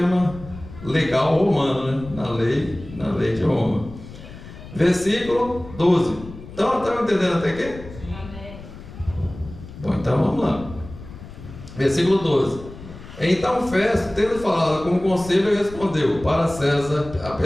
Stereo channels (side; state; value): left; noise; rumble, 15 dB below the sound